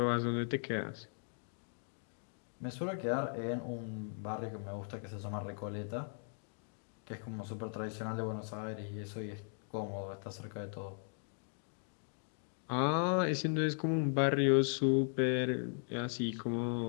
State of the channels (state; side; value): silent; right; 52 dB below the other